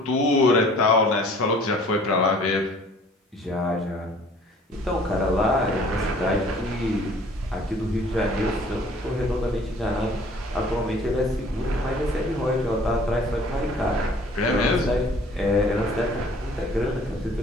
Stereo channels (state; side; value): normal; both; correlation 0.53